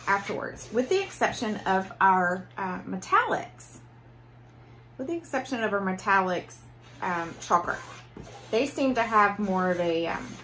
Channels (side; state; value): both; identical; correlation 1.00